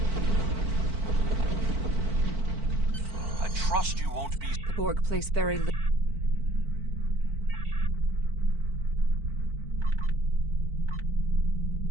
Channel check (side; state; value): left; late; 4.5 ms